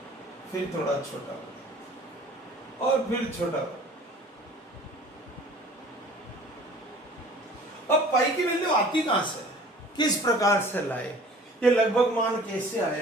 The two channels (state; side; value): normal; both; correlation 0.47